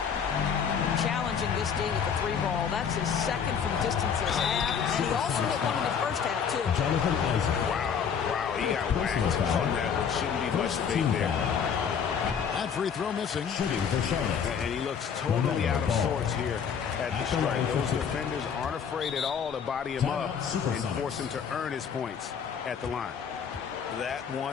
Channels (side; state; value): right; quieter; 7.1 dB